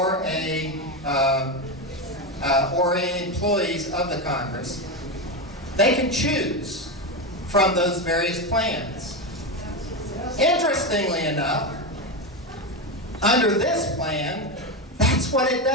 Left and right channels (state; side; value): normal; both; correlation 0.14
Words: employees of the Congress, they can choose from those various plans. Interestingly enough, under this plan, that's what it